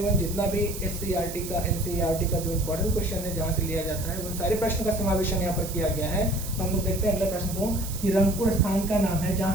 1 जितना भी SCERT का NCERT का जो इम्पोर्टेंट क्वेश्चन है जहाँ से लिया जाता है उन सारे प्रश्नों का समावेशन यहाँ पर किया गया है। तो हम लोग देखते हैं अगले प्रश्न को कि रंगपुर स्थान का नाम है जहाँ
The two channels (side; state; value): right; noise; hiss, 10 dB below the sound